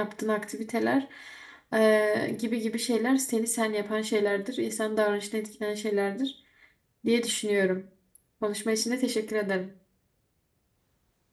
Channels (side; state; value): both; identical; correlation 1.00